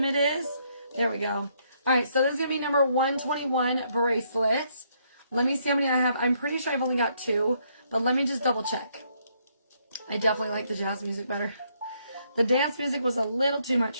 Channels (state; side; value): inverted; both; correlation -0.72